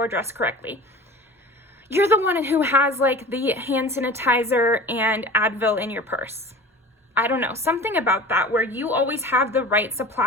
dressed correctly. You're the one who has like the hand sanitizer and Advil in your purse. I don't know, something about that where you always have the right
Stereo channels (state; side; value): normal; both; correlation 0.38